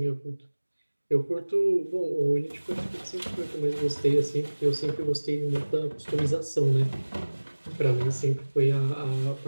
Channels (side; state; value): both; inverted; correlation -1.00